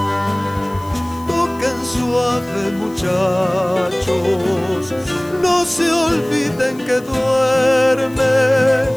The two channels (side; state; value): left; noise; hiss, 24 dB below the sound